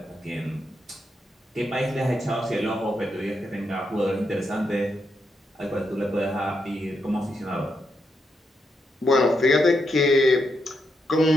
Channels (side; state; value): both; normal; correlation 0.81